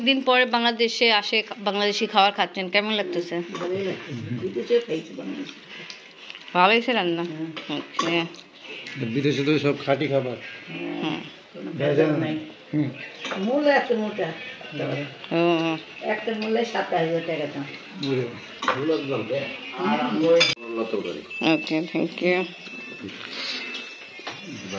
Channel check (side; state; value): both; identical; correlation 1.00